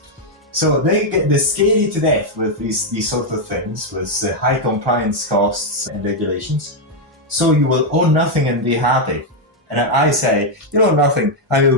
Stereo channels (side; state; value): both; normal; correlation 0.01